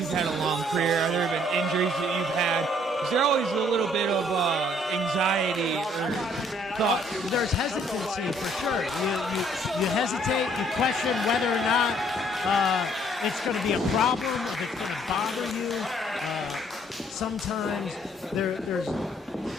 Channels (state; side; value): normal; both; correlation 0.63